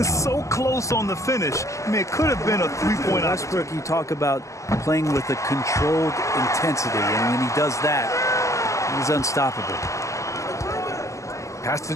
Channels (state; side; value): late; right; 0.15 ms